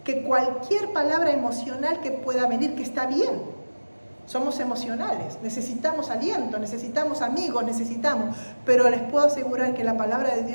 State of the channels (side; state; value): both; inverted; correlation -1.00